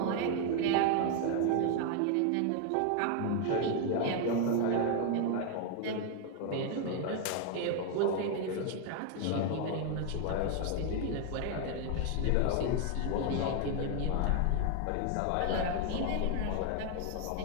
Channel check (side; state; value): both; different; correlation 0.00